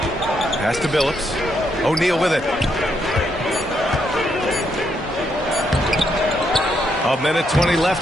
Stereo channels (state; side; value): normal; both; correlation 0.77